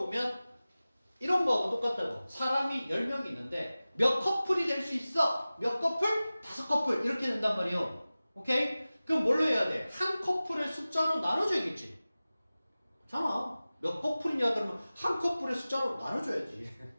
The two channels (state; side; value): inverted; both; correlation -0.97